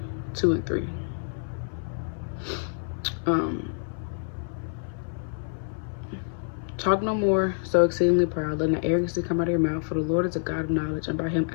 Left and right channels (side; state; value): right; silent; 60 dB below the other